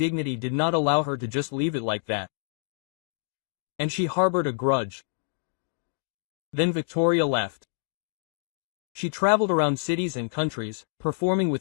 did not allow her to just leave it like that. And she harbored a grudge. Then Victoria left. She traveled around cities and countries, performing with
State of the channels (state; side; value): silent; right; digital silence